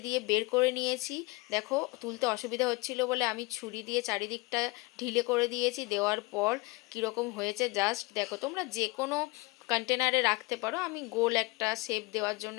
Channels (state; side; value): quieter; right; 24.5 dB